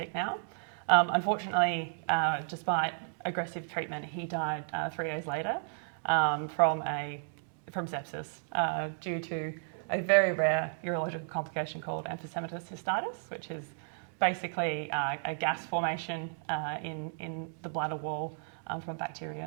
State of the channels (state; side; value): silent; left; digital silence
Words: now. Unfortunately, despite aggressive treatment, he died 3 days later from sepsis due to a very rare urological complication called emphysematous cystitis, which is basically a gas formation in the bladder wall from